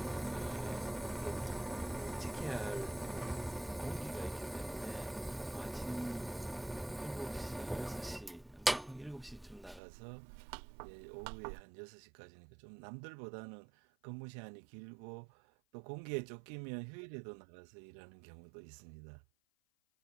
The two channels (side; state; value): left; drops out; at 9.8 s